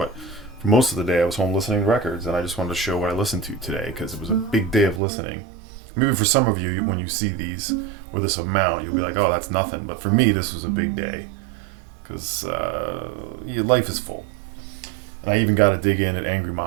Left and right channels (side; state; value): left; drops out; at 5.0 s